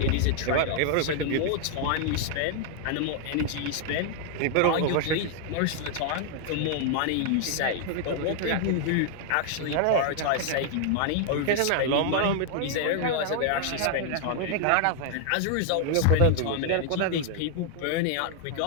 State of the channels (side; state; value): both; different; correlation 0.00